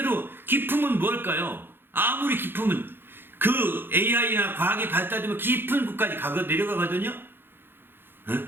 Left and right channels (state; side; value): late; left; 0.10 ms